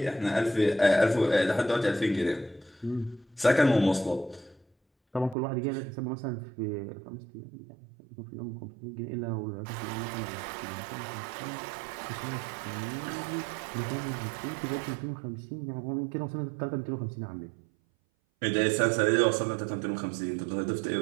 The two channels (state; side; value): drops out; left; at 5.4 s